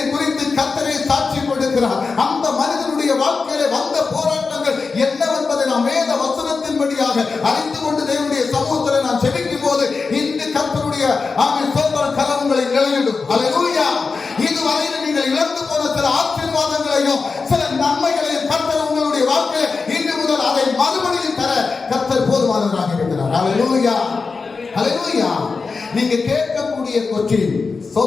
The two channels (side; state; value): right; quieter; 4.5 dB